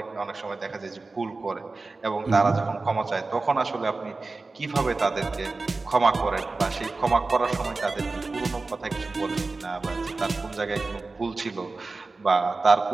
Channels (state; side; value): quieter; left; 3.6 dB